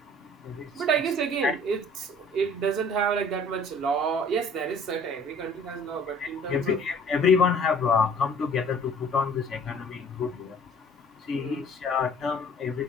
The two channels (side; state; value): both; normal; correlation 0.52